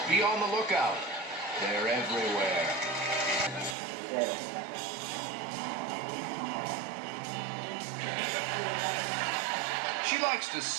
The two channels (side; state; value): left; drops out; at 3.8 s